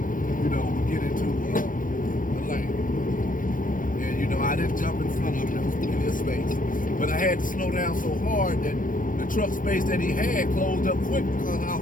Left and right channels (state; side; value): late; right; 0.39 ms